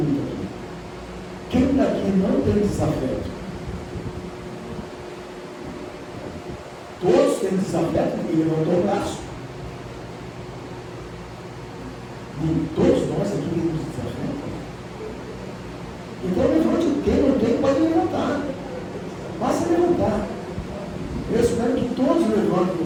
aqui. Quem daqui não tem desafeto? Todos têm desafeto? Ninguém levantou o braço. Todos nós aqui temos desafeto. Então levante. Quem não tem pode levantar. Basta levantar. Eu espero que todos levantem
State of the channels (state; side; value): identical; both; correlation 1.00